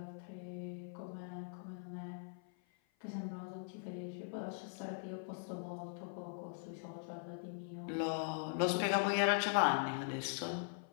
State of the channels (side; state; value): right; silent; 50 dB below the other